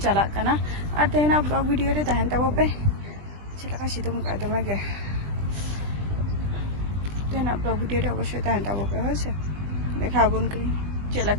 चला कना और तेहना ब्लॉग वीडियो रे तहन तबो पे चलका सितुम का दमे गे तेहना ब्लॉग वीडियो रे अवश्य तहन तबो पे होसे देखा बन करी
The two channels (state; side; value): late; left; 20 ms